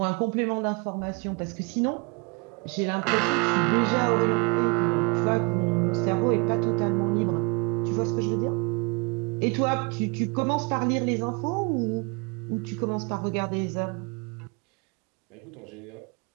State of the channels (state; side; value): quieter; left; 31.3 dB